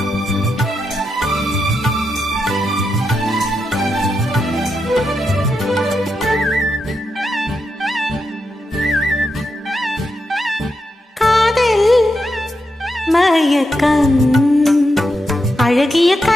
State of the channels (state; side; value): normal; both; correlation 0.85